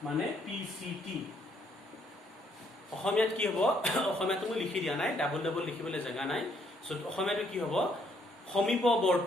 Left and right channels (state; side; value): normal; both; correlation 0.69